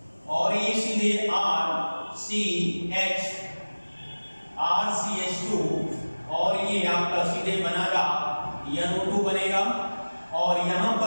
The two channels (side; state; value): both; inverted; correlation -1.00